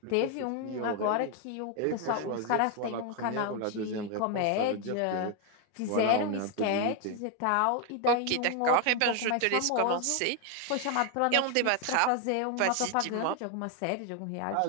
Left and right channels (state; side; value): different; both; correlation 0.01